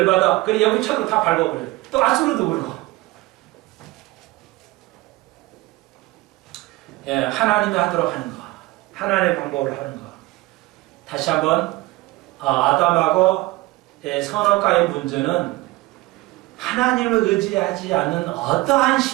그래 여기 쳐도 다 밟아버려요. 또 아수르도 그러고. 예, 하나님이 하도록 하는 거. 하나님의 방법을 하는 거. 다시 한번 아담하고 선악과의 문제는 하나님을 의지하지 않는 어떠한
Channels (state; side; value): quieter; left; 20.2 dB